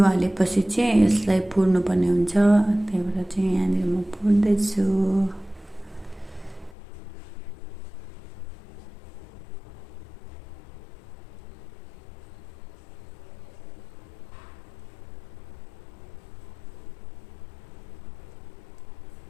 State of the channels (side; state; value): right; drops out; at 6.8 s